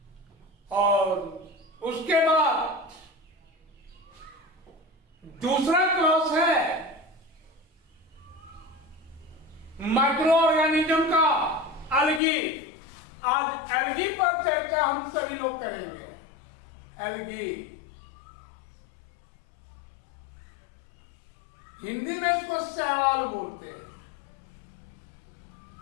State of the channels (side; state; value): right; drops out; at 12.2 s